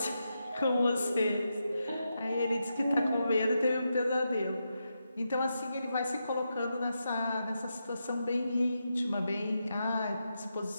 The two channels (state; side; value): inverted; both; correlation -0.86